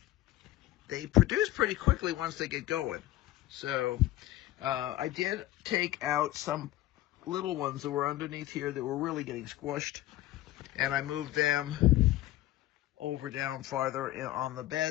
They produce pretty quickly once they get going. So, I did take out some little ones that were underneath here that were really getting squished. And I moved them over down farther on the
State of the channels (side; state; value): right; quieter; 15.4 dB